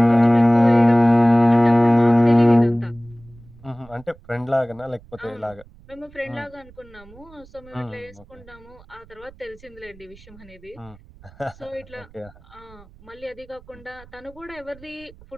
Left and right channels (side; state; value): right; noise; rumble, 24 dB below the sound